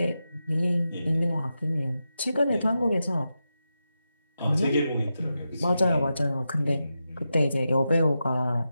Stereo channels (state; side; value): inverted; both; correlation -0.89